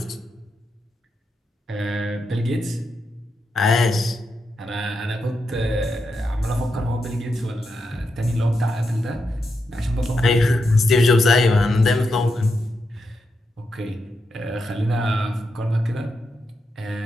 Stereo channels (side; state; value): both; normal; correlation 0.85